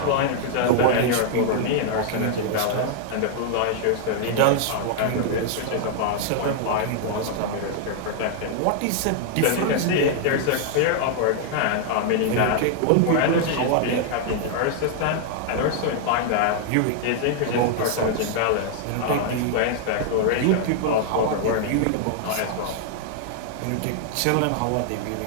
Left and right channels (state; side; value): different; both; correlation -0.01